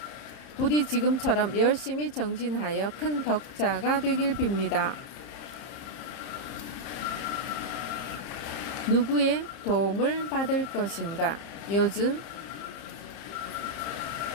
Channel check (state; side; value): late; right; 30 ms